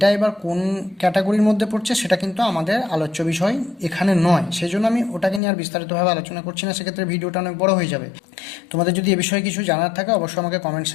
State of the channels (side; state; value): right; drops out; at 5.4 s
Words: এবার কোন ক্যাটাগরির মধ্যে পড়ছে সেটা কিন্তু আমাদের আলোচ্য বিষয় এখানে নয়, সেই জন্য আমি ওটাকে নিয়ে আর বিস্তারিতভাবে আলোচনা করছি না, সেক্ষেত্রে ভিডিওটা অনেক বড় হয়ে যাবে। তোমাদের যদি এ বিষয়ে কিছু জানার থাকে অবশ্যই আমাকে কমেন্ট